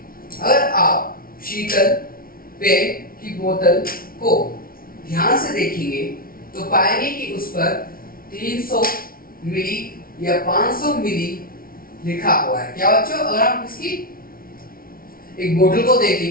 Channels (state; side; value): late; right; 0.43 ms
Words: अगर आप शीतल पेय की बोतल को ध्यान से देखेंगे तो पाएंगे कि उस पर 300 मिली या 500 मिली लिखा हुआ है। क्या बच्चों, अगर हम इसकी एक बोतल को